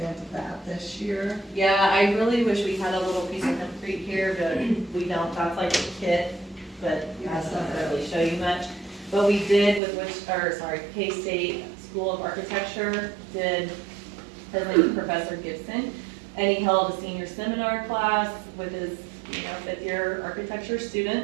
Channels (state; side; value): drops out; left; at 9.8 s